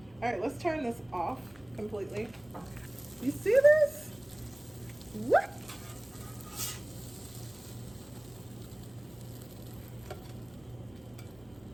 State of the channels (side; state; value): left; noise; rumble, 25 dB below the sound